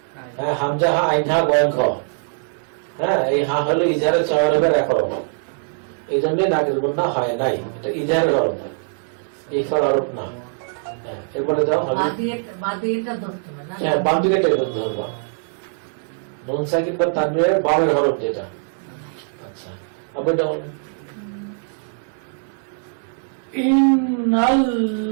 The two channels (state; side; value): silent; left; 64 dB below the other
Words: হ্যাঁ হামজা হা আইন হা গয়ন খ হ্যাঁ এই হা হলো ইজারে চাওয়ারের এক হরফ এই জন্য নাকের গন্ধ হয় নাই এটা ইজারের হরফ ইফার হরফ না হ্যাঁ এরপরে দাও হবে বাদিয়েটা ধরতে হবে না হ্যাঁ বাম দিকে টেনে ধরবো নুন সাকিন বা তানবীরের বামের হরফ যেটা আচ্ছা আবার এটা বলো।